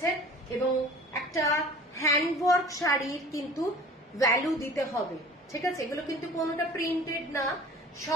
এবং একটা হ্যান্ডওয়ার্ক শাড়ির কিন্তু ভ্যালু দিতে হবে, ঠিক আছে। এগুলো কিন্তু কোনোটা প্রিন্টেড না,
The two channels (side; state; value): both; normal; correlation 0.45